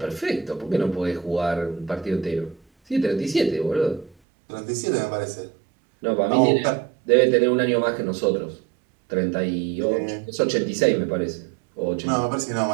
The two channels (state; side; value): drops out; left; at 4.2 s